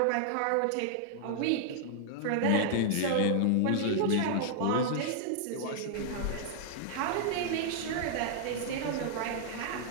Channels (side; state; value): both; different; correlation -0.01